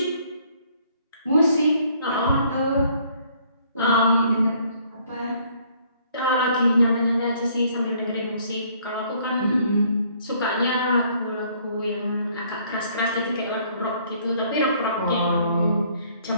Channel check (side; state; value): both; inverted; correlation -0.63